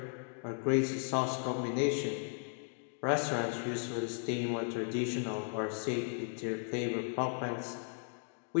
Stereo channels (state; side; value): silent; right; 54 dB below the other